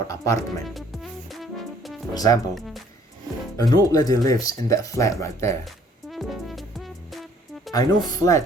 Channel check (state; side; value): normal; both; correlation 0.60